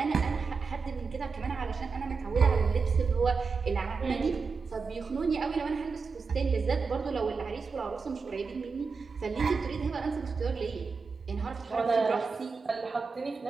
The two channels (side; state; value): left; quieter; 4.9 dB